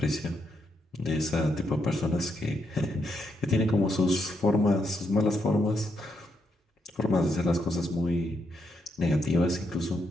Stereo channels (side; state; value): both; normal; correlation 0.79